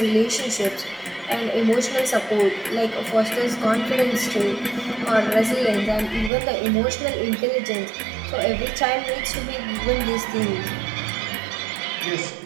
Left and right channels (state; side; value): drops out; left; at 6.3 s